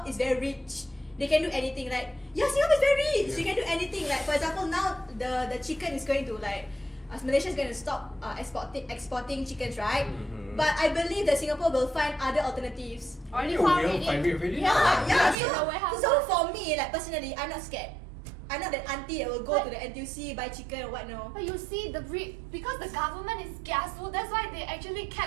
is very rich. They can do anything. Like, Singapore is very rich. You can do anything. Like, for example, now the chicken is going to Malaysia is going to stop exporting chickens, right? But I believe that Singapore will find other alternatives. Already You found will it. find it really? Yeah. in the warehouse. So for me, like personally, I'm not scared. I'm not that auntie that will go to the NTUC buy chicken or what. No. But you see, because the government is kiasu, that's why they actually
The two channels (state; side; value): drops out; left; at 15.4 s